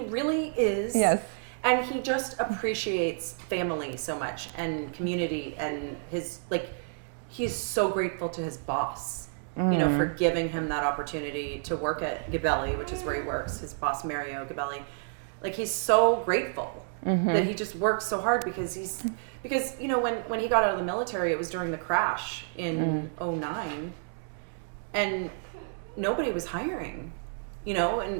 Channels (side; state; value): left; silent; digital silence